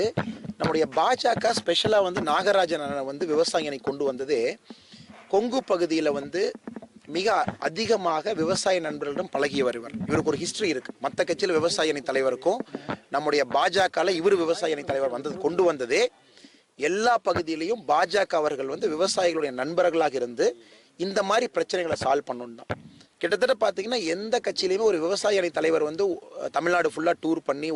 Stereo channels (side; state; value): both; identical; correlation 1.00